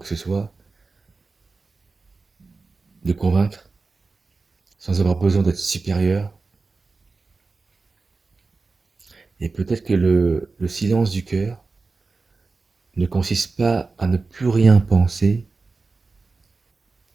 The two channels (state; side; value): quieter; left; 4.0 dB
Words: que ce soit, de convaincre, sans avoir besoin d'être supérieur. Et peut-être que le silence du cœur ne consiste pas à ne plus rien penser,